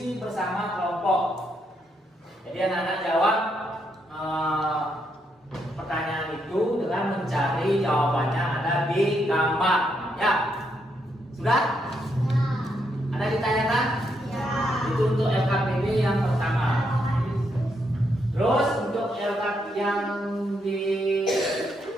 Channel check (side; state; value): both; normal; correlation 0.78